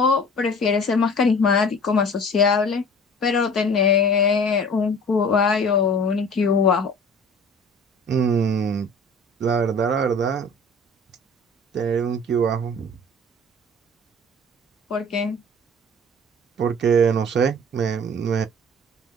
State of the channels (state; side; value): normal; both; correlation 0.44